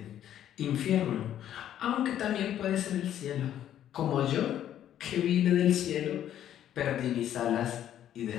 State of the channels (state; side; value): quieter; right; 11.0 dB